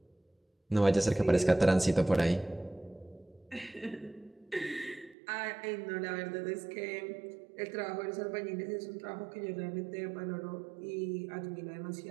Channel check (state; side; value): drops out; left; at 5.2 s